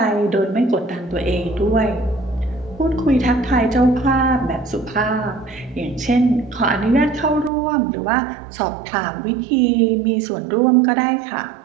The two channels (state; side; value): drops out; left; at 7.5 s